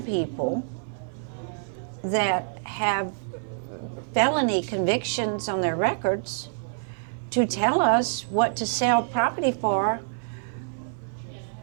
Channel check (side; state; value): left; silent; 57 dB below the other